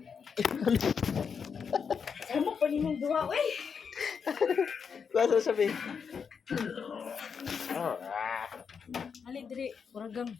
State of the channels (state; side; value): quieter; right; 6.3 dB